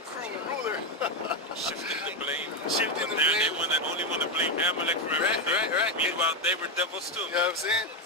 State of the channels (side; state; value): both; normal; correlation 0.07